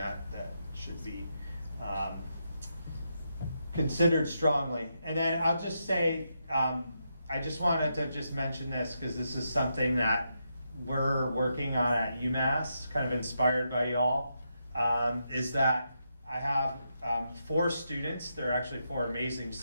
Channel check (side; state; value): both; inverted; correlation -0.83